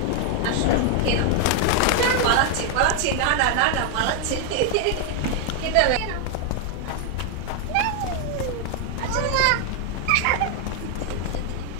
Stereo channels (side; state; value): both; different; correlation 0.00